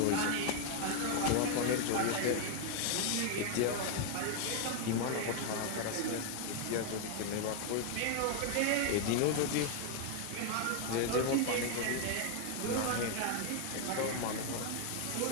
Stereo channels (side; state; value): both; different; correlation 0.00